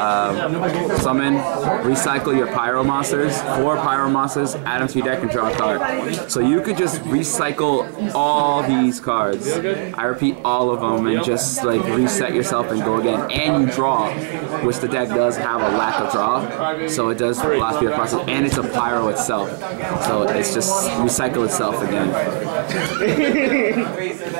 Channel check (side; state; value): left; silent; 57 dB below the other